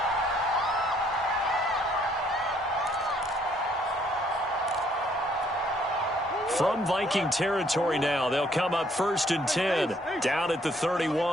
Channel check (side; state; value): both; normal; correlation 0.65